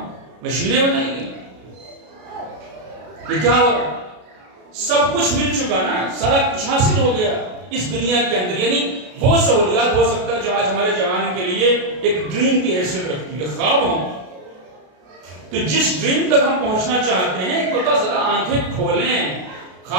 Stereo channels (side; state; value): left; late; 33 ms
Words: مشینیں بنائی گئی. یہ کیا ہو رہا؟ سب کچھ مل چکا نا, سارا کچھ حاصل ہو گیا اس دنیا کے اندر. یعنی وہ سہولیات ہو سکتا ہے جو آج ہمارے جوان کے لیے ایک ڈریم کی حیثیت رکھتی ہے, خواب ہوں. تو جس ڈریم تک ہم پہنچنا چاہتے ہیں ایک بتا ذرا آنکھیں کھولیں,